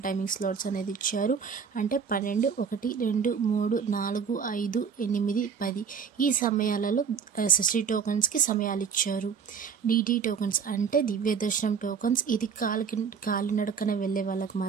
టైమింగ్ స్లాట్స్ అనేది ఇచ్చారు. అంటే 12, 1, 2, 3, 4, 5, 8, 10 ఈ సమయాలలో ఎస్ఎస్డి టోకన్స్కి సమయాలు ఇచ్చారు. డిడి టోకన్స్ అంటే దివ్య దర్శనం టోకన్స్. ఇది కాలినడకన వెళ్ళే వాళ్ళకి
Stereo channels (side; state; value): left; quieter; 6.5 dB